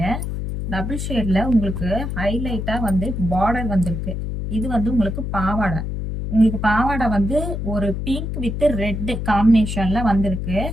ஷேடில் உங்களுக்கு ஹைலைட்டாக வந்து பார்டர் வந்திருக்கு. இது வந்து உங்களுக்கு பாவாடை வந்து ஒரு பிங்க் வித் ரெட் காம்பினேஷனில் வந்திருக்கு.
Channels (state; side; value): noise; left; hum, 4 dB below the sound